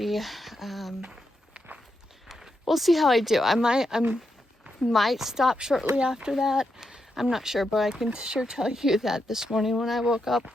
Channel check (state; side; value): normal; both; correlation 0.84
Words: We'll see how I do. I might stop shortly after that. I'm not sure, but I can sure tell you that this morning when I woke up,